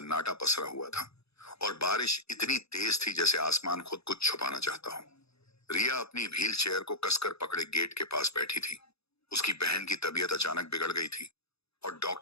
पसरा हुआ था और बारिश इतनी तेज थी जैसे आसमान खुद कुछ छुपाना चाहता हो। रिया अपनी व्हील चेयर को कसकर पकड़े गेट के पास बैठी थी। उसकी बहन की तबीयत अचानक बिगड़ गई थी और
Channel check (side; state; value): right; late; 0.78 ms